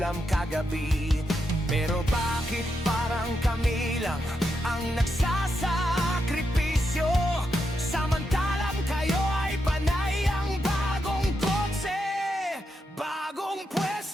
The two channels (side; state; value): both; normal; correlation 0.84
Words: kagabi. Pero bakit parang kami lang ang nagsasakripisyo, samantalang kayo ay panay ang bagong kotse, bagong